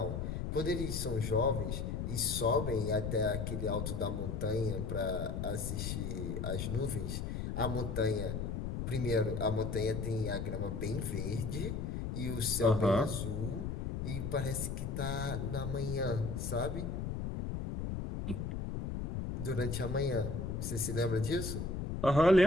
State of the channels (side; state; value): left; noise; rumble, 3 dB below the sound